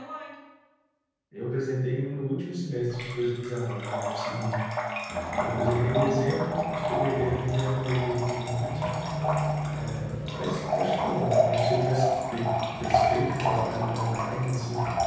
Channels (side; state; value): both; identical; correlation 1.00